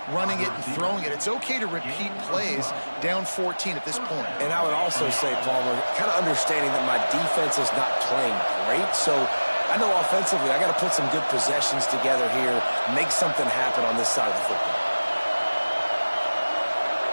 running it and throwing it. It's okay to repeat plays down 14 at this point. And I would also say, Palmer, kind of understanding that my defense is not playing great, so I know offensively I got to put some good possessions together here, make something happen on this side of the football.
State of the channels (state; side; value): inverted; both; correlation -1.00